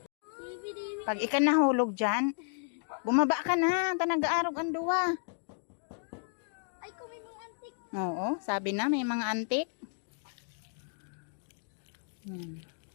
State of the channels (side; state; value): right; silent; digital silence